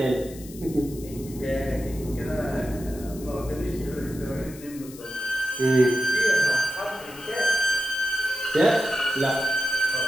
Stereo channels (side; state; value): left; noise; hiss, 18 dB below the sound